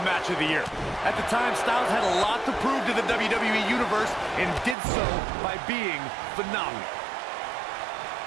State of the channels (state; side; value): drops out; left; at 4.8 s